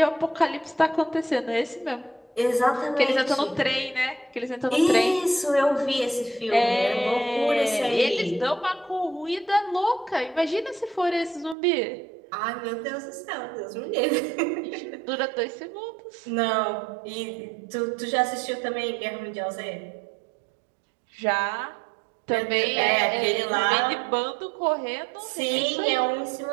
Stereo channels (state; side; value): drops out; left; at 11.6 s